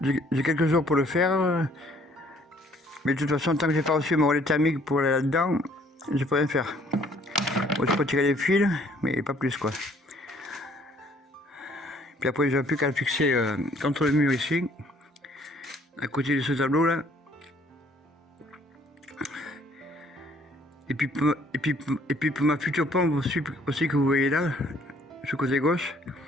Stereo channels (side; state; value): both; normal; correlation 0.61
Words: quelques jours pour le faire. Mais de toute façon, tant que j'ai pas reçu mon relais thermique pour aller là-dedans, je peux rien faire. Bon, je peux tirer les fils, mais pas plus quoi. Puis après, j'ai plus qu'à le fixer contre le mur ici, à côté de ce tableau là. Et puis pour ma future pompe aussi que vous voyez là, ce côté gauche,